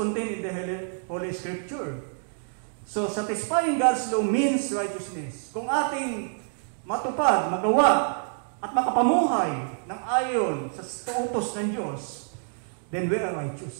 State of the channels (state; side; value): silent; left; digital silence